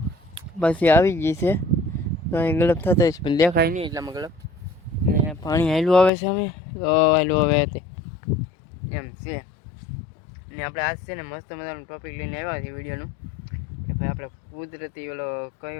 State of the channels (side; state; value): right; drops out; at 6.1 s